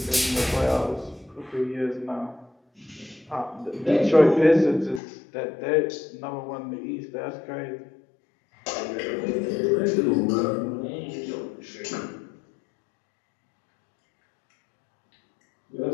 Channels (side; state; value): right; drops out; at 5.0 s